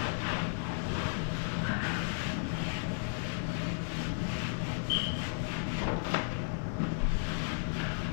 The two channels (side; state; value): right; silent; 55 dB below the other